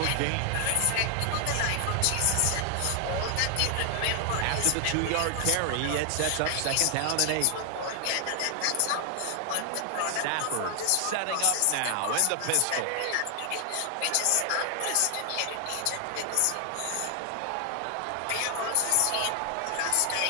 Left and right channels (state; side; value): different; both; correlation 0.00